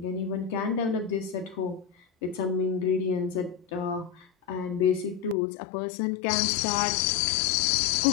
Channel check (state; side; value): drops out; right; at 5.4 s